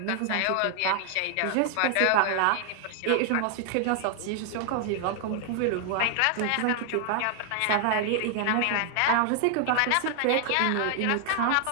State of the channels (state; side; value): different; both; correlation 0.00